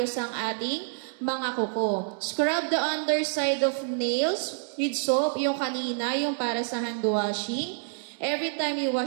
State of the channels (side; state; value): left; silent; 60 dB below the other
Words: ang ating mga kuko. Scrub the underside of nails with soap, yung kanina, yung para sa hand washing, every time you